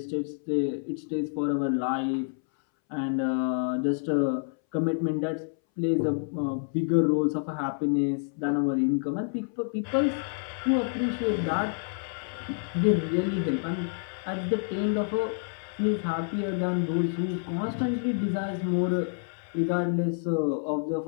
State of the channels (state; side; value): silent; right; 59 dB below the other